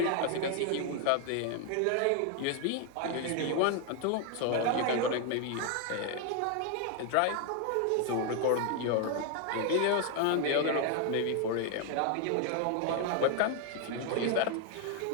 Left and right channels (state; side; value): different; both; correlation 0.01